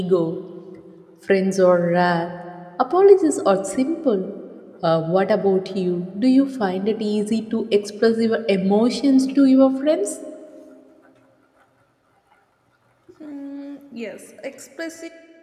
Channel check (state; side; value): identical; both; correlation 1.00